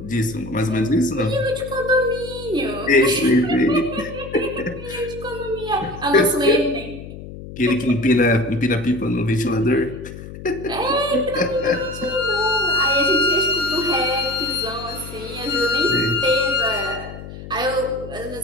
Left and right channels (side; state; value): left; noise; hum, 13 dB below the sound